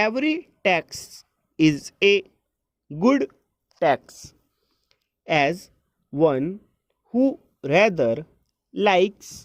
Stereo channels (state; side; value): identical; both; correlation 1.00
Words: tax is a good tax, as one who rather